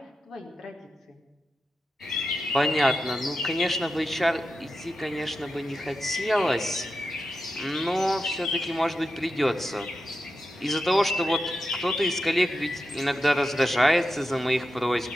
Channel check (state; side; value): normal; both; correlation 0.89